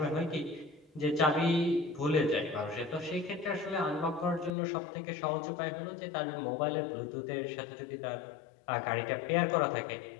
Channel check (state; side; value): drops out; right; at 4.5 s